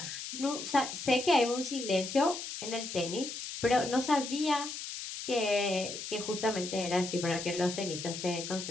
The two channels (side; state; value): left; noise; hiss, 7 dB below the sound